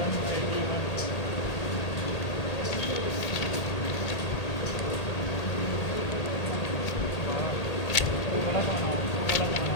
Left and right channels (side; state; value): right; late; 1.8 ms